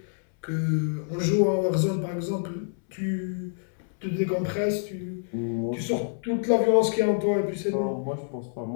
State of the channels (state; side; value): silent; right; 60 dB below the other